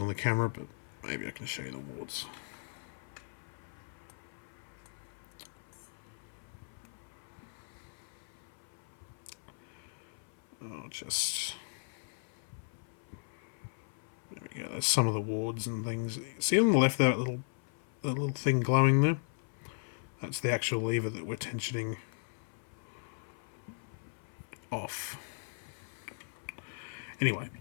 the camera, but maybe I can show you the wards. I'll just... There we go, there's some of the wards and things. See on the left there, that little thing glowing there? That's the actual lever that we're tensioning off. Anyway,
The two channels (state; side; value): silent; right; 53 dB below the other